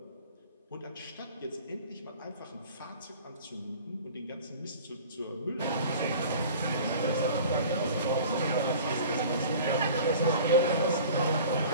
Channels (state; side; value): inverted; both; correlation -0.43